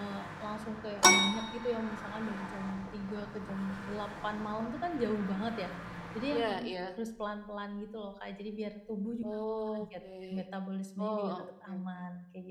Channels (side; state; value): both; identical; correlation 1.00